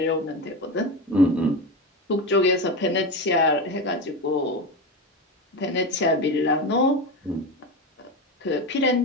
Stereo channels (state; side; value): normal; both; correlation 0.20